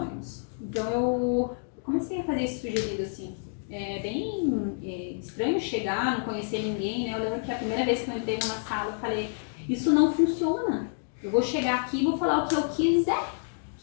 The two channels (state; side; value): silent; right; digital silence